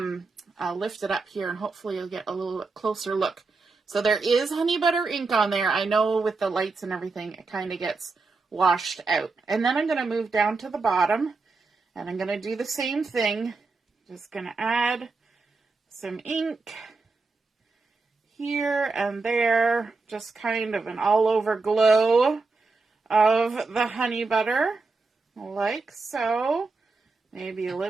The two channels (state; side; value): quieter; left; 4.0 dB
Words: lift it up here and hopefully you'll get a little closer look. So there is honey butter ink on there. I know with the lights and everything, it kind of gets washed out. And then I'm going to move down to the bottom and I'm going to do the same thing. Just going to add some ink here and there. Just kind of an all over glow of the honey butter, like so. Maybe a